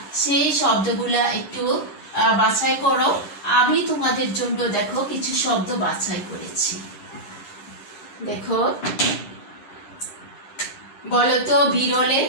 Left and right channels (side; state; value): right; late; 10 ms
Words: সেই শব্দগুলা একটু বাছাই করো। আমি তোমাদের জন্য দেখো কিছু শব্দ বাছাই করেছি। দেখো, বলো তো বিরলে।